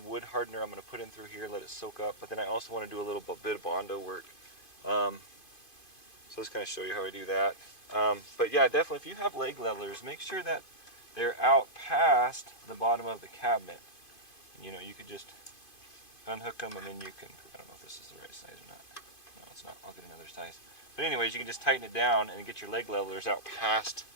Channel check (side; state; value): right; late; 2.5 ms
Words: wood hardener I'm going to put in through here, let it soak up, but then I also want to do a little bit of Bondo work. So let's kind of show you how I do that. But yeah, definitely if you have leg levelers, make sure that they're out past the bottom of the cabinet. And, you know, you could just unhook them and then you can, I don't know if this is the right size or not. No, it's not. I'll get another size. But anyways, you can just tighten it down and get your leg levelers out past